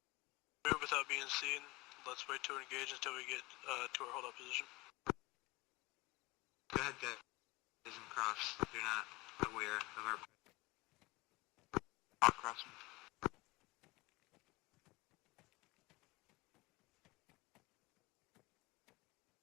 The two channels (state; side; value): quieter; right; 22.4 dB